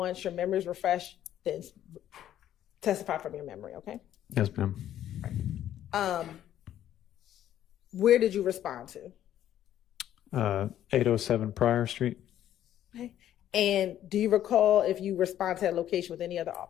your memory is refreshed, then testify from your memory, okay? Yes, ma'am. Where did you respond to? 807 Pryor Street. Okay. And do you recall if you respond to that location with any other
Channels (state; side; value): quieter; right; 11.5 dB